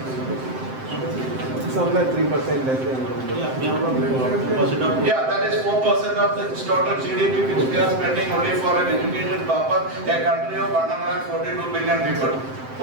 Somewhere 3% less than. Yeah, that is 4% of the total GDP which we are spending only for an education purpose. A country of 142 billion people,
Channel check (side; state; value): left; late; 7.7 ms